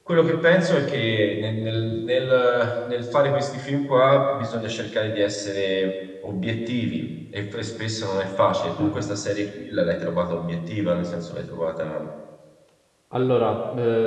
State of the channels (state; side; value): identical; both; correlation 1.00